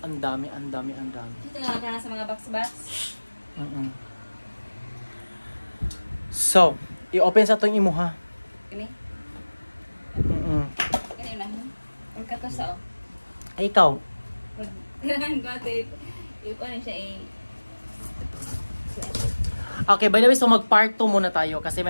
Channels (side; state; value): both; inverted; correlation -1.00